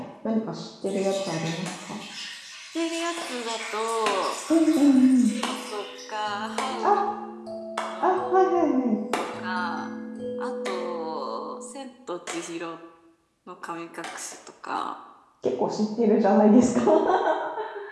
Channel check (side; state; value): both; identical; correlation 1.00